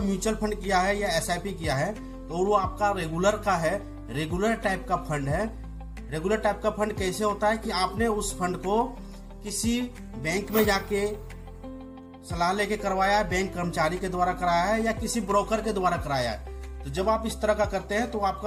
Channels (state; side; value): identical; both; correlation 1.00